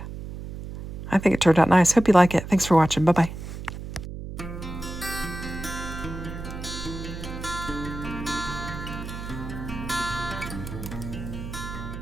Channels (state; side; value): noise; right; hum, 9 dB below the sound